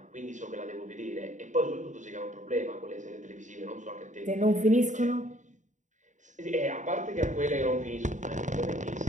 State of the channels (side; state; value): left; late; 0.36 ms